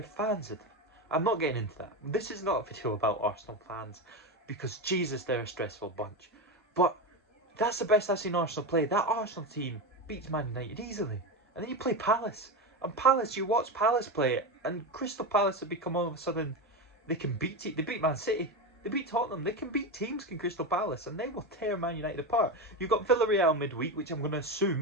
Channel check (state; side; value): normal; both; correlation 0.17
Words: fans. I'm not getting into that. This is not a video about Arsenal fans, because Jesus, they're a stressful bunch. But that's the best I've seen Arsenal play. That Arsenal team beats Man United easily. And then you play Palace. And Palace, you watch Palace play it, and Crystal Palace have become all of a sudden, they can beat it. They beat Man City. They beat Tottenham. They can beat teams in Crystal Palace, and they will tear Man United apart. You've got Villarreal midweek, which I'm going to